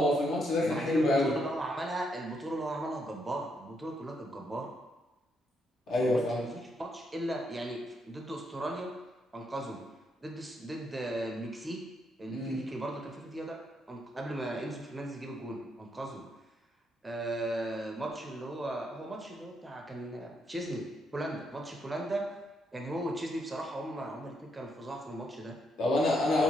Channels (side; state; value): both; normal; correlation 0.77